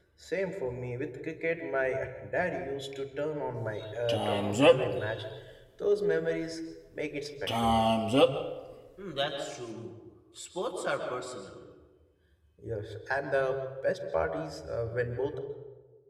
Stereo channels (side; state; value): both; identical; correlation 1.00